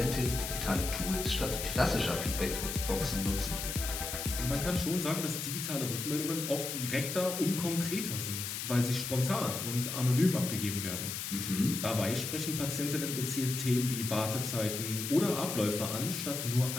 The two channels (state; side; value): noise; left; hiss, 4 dB below the sound